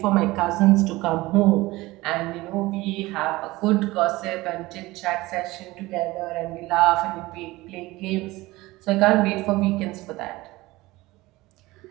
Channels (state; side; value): quieter; left; 19.8 dB